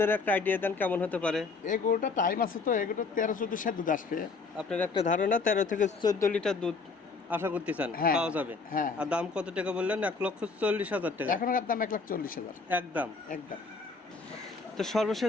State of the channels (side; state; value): right; quieter; 4.3 dB